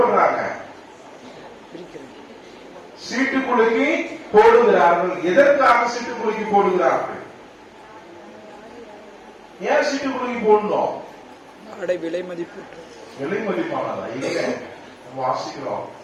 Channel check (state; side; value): identical; both; correlation 1.00